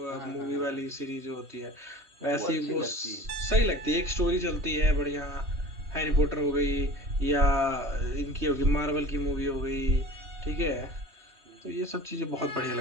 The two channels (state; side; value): late; left; 3.2 ms